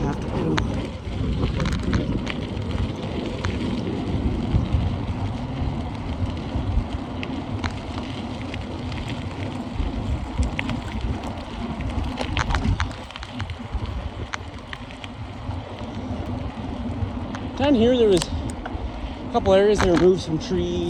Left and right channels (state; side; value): identical; both; correlation 1.00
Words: to do. Down here, there was a couple areas that removed some